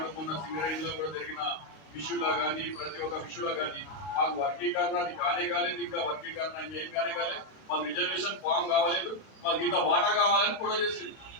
మొన్న సింగరేణిలో కూడా జరిగిన విషయంలో కానీ ప్రతి ఒక్క విషయంలో కానీ మాకు వర్గీకరణ అది కానే కాలేదు, ఇంకా వర్గీకరణ ఇంకేం కానే కాలేదు, మాకు రిజర్వేషన్ ఫామ్ కావాలేదు, మాకు ఇంత వాటా కావాలని కూడా చేసింది.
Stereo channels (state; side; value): late; right; 32 ms